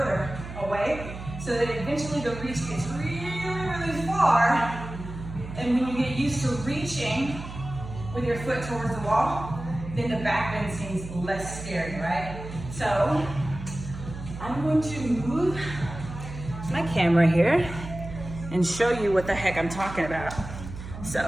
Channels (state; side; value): noise; right; hum, 11 dB below the sound